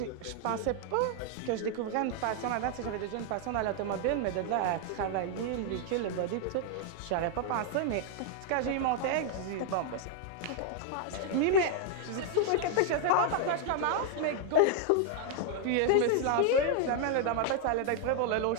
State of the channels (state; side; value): different; both; correlation 0.00